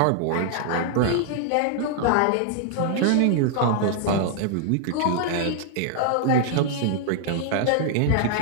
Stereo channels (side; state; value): both; different; correlation 0.00